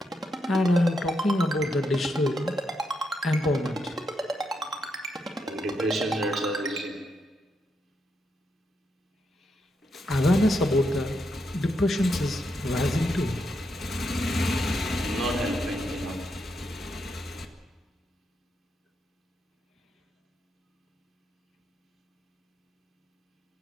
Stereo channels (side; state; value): both; normal; correlation 0.82